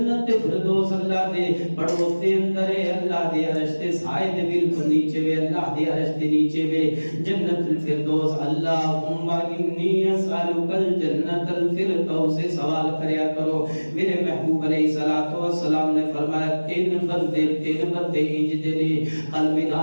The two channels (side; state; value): both; inverted; correlation -1.00